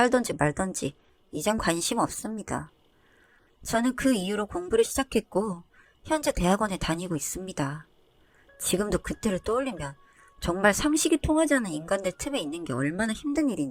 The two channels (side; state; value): both; identical; correlation 1.00